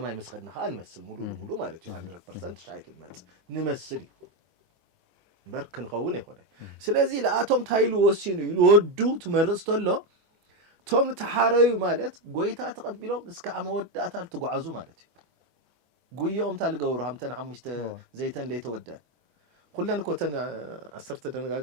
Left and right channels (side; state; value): left; late; 23 ms